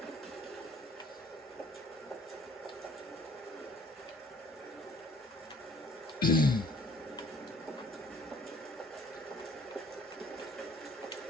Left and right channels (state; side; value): normal; both; correlation 0.56